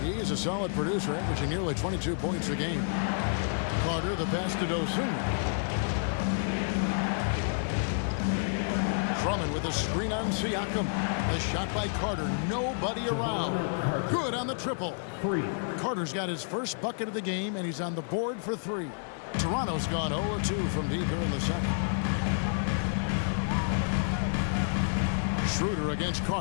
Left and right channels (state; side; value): silent; right; 58 dB below the other